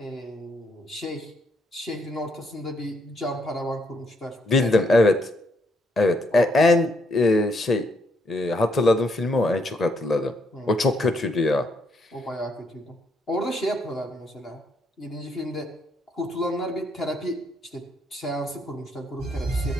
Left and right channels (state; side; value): normal; both; correlation 0.74